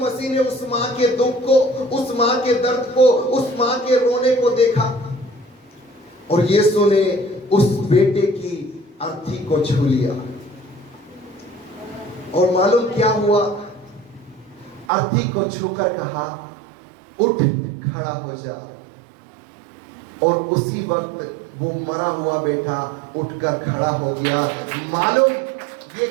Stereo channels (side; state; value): left; drops out; at 14.9 s